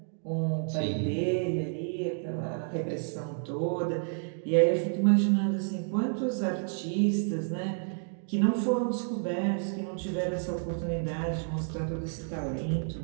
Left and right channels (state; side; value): silent; left; 58 dB below the other